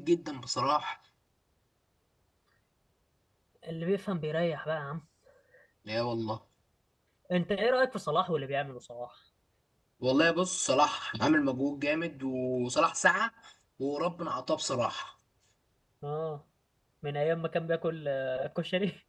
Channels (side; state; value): both; identical; correlation 1.00